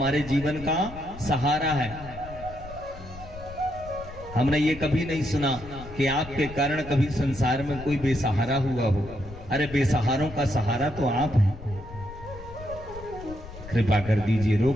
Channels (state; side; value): noise; left; rumble, 14 dB below the sound